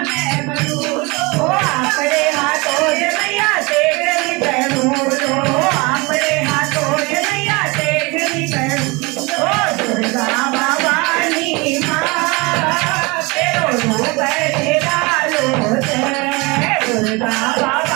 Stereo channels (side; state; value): left; quieter; 26.1 dB